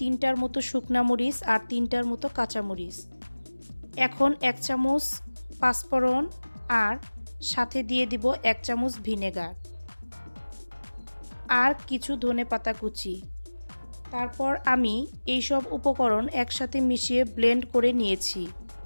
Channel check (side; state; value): both; inverted; correlation -1.00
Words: মতো শুকনা মরিচ আর 3টার মতো কাঁচামরিচ। এখন 1 চামচ পাঁচফোড়ন আর সাথে দিয়ে দিব 1 চামচ ভিনেগার আর কিছু ধনেপাতা কুচি। তারপর আমি এই সব উপকরণ একসাথে মিশিয়ে ব্লেন্ড করে নিয়েছি।